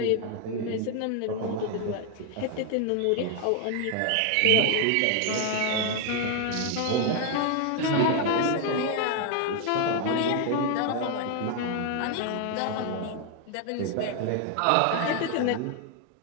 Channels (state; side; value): different; both; correlation 0.00